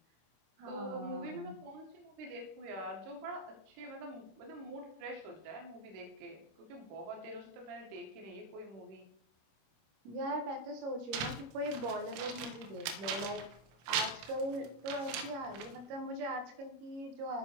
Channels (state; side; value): late; left; 26 ms